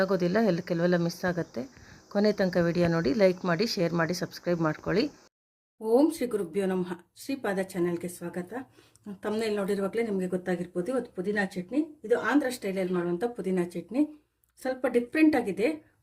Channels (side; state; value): both; identical; correlation 1.00